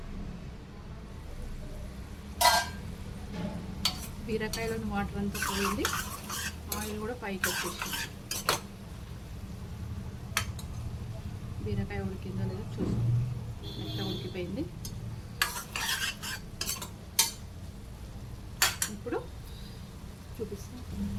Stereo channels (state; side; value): identical; both; correlation 1.00